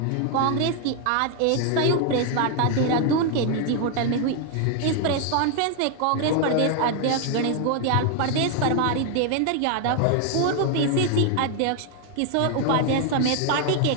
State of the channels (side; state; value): both; different; correlation 0.00